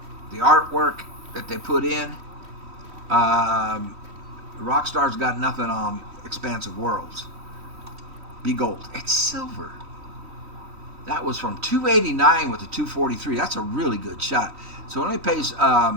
the artwork that they put in, Rockstar's got nothing on Expansive Worlds. Be gold. It's silver. That was from 289 with the 243. That's a really good shot. So it only pays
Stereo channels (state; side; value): late; left; 3.1 ms